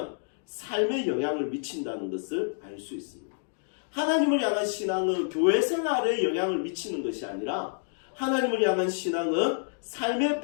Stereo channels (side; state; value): right; silent; digital silence